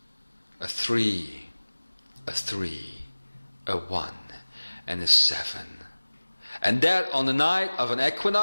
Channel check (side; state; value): both; inverted; correlation -1.00